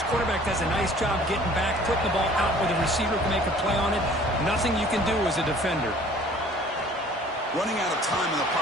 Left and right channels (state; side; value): normal; both; correlation 0.52